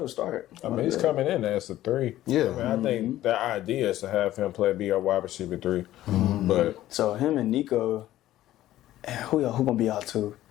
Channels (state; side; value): quieter; right; 14.2 dB